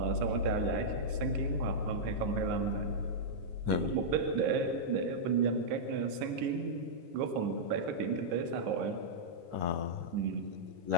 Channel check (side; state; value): left; late; 12 ms